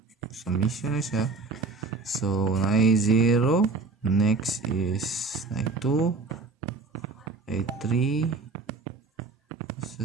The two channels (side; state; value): left; quieter; 4.0 dB